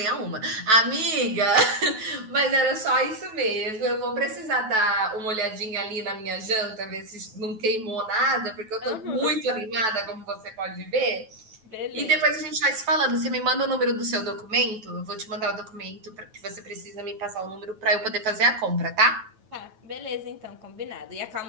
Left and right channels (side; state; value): left; late; 9.2 ms